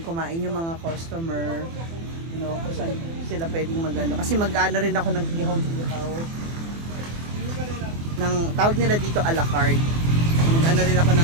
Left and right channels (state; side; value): late; left; 24 ms